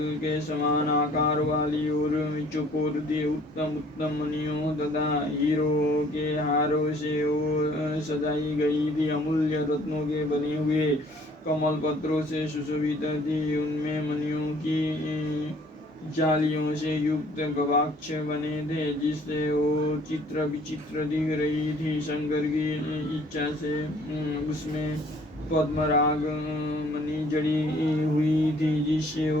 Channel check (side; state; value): both; normal; correlation 0.57